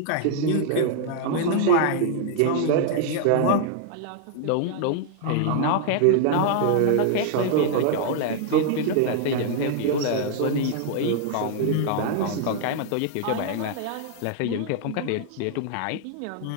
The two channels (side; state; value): both; different; correlation 0.00